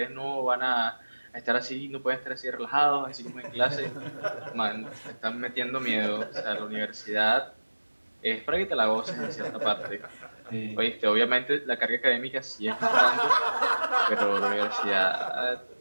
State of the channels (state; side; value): inverted; both; correlation -1.00